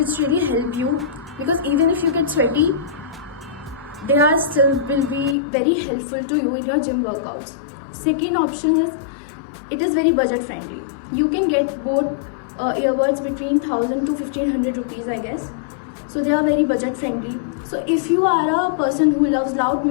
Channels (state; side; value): drops out; right; at 5.4 s